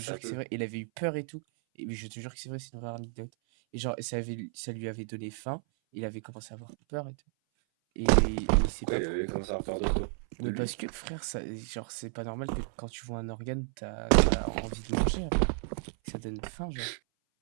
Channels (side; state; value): left; silent; 56 dB below the other